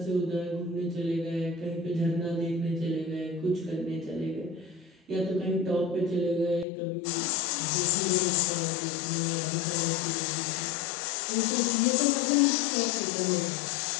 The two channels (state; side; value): drops out; right; at 6.7 s